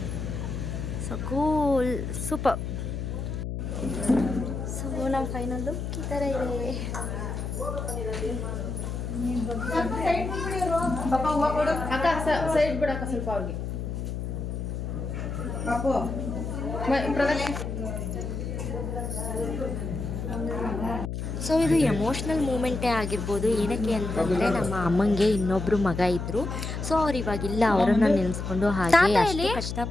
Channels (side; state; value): left; noise; hum, 4 dB below the sound